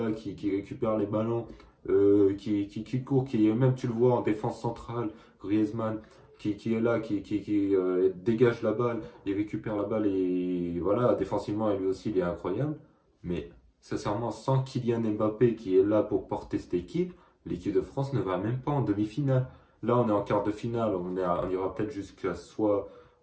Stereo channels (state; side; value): identical; both; correlation 1.00